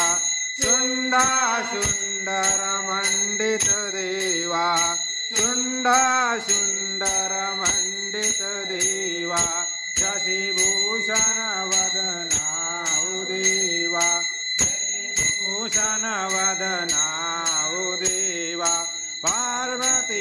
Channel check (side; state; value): both; identical; correlation 1.00